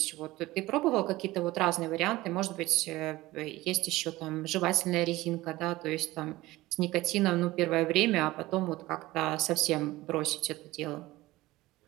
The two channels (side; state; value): left; quieter; 18.3 dB